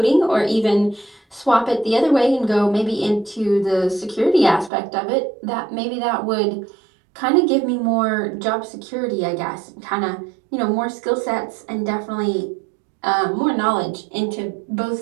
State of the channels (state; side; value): drops out; left; at 4.7 s